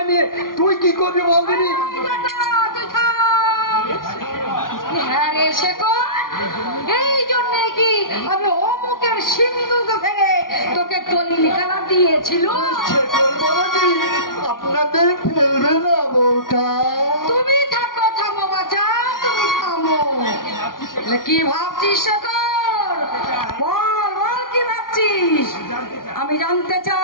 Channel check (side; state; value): right; late; 0.91 ms